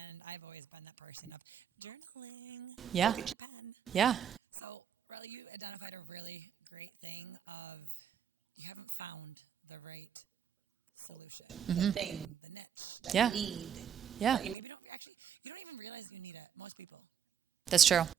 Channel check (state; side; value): quieter; left; 8.6 dB